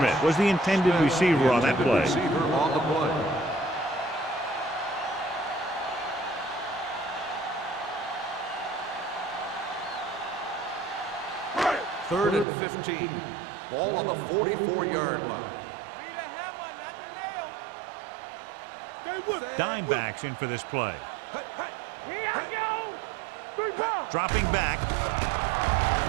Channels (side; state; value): left; drops out; at 12.5 s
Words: was the intended receiver on that play. Receiver on the play. Third and 15. Ball on the 44-yard line. Be the hammer, not the nail. Dime backs in for this play. Here I go. 3 points. Dropping back.